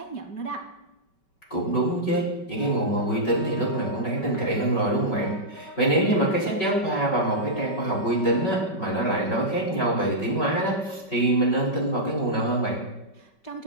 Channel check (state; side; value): late; right; 5.2 ms